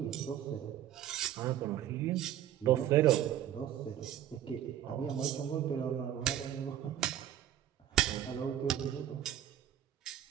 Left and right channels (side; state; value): left; quieter; 11.4 dB